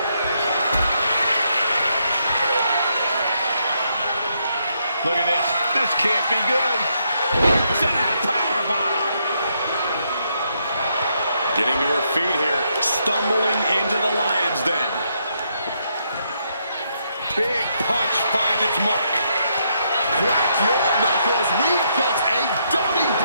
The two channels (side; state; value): both; inverted; correlation -0.77